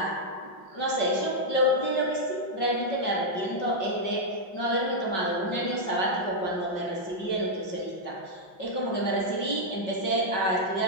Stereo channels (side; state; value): right; late; 5.5 ms